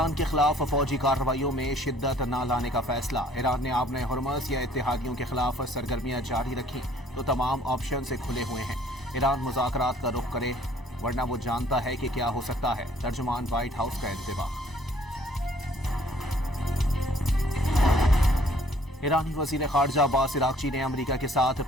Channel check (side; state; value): both; normal; correlation 0.59